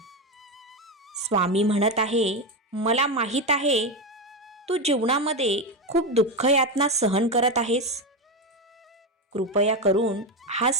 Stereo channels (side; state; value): both; normal; correlation 0.13